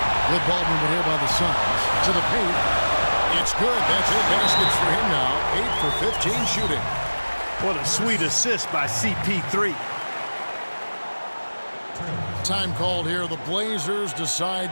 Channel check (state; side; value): inverted; both; correlation -1.00